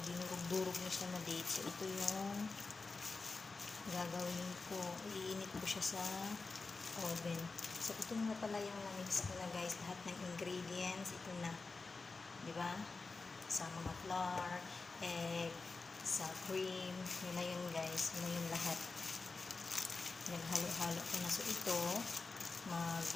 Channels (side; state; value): right; quieter; 4.0 dB